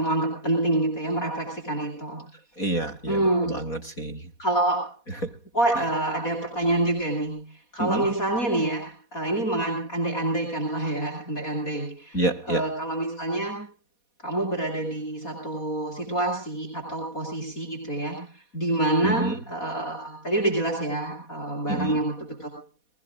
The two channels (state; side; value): late; right; 4.2 ms